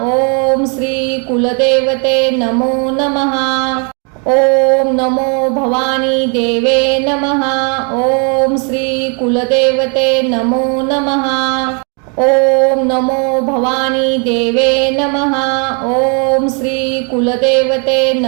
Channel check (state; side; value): quieter; left; 37.4 dB